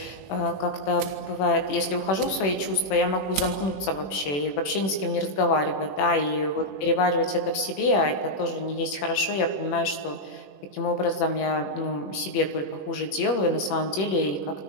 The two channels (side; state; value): right; late; 21 ms